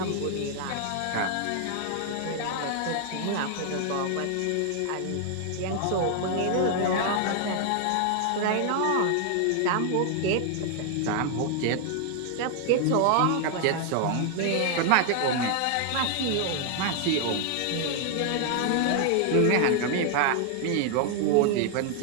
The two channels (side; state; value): both; different; correlation 0.00